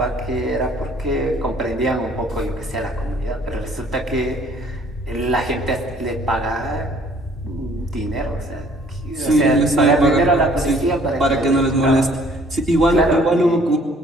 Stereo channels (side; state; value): both; normal; correlation 0.58